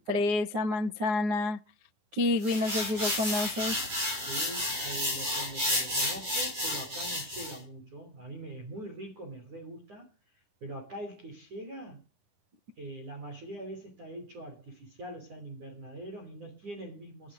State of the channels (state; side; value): late; left; 10 ms